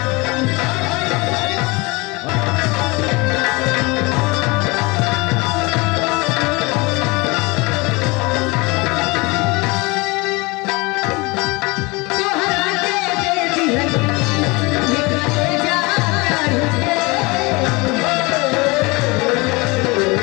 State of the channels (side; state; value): right; quieter; 25.6 dB